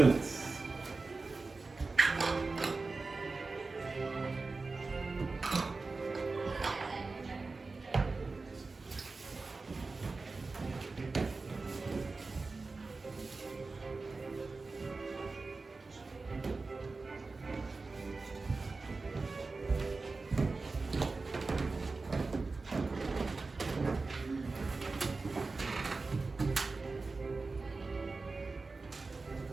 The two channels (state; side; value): quieter; left; 3.8 dB